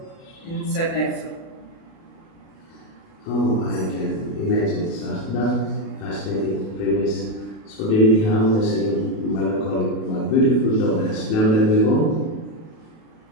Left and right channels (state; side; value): late; right; 37 ms